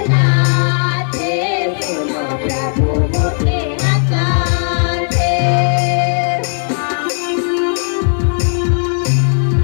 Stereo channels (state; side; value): silent; right; digital silence